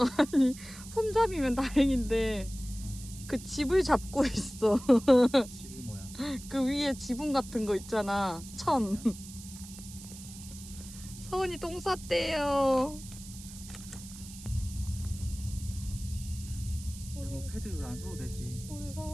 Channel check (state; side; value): noise; right; hiss, 15 dB below the sound